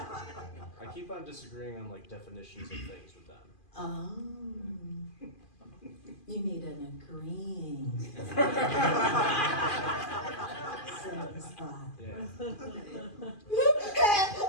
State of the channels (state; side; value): late; right; 2.4 ms